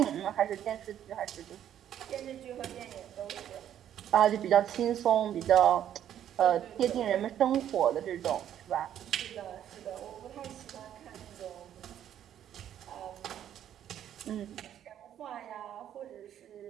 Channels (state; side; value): quieter; left; 10.5 dB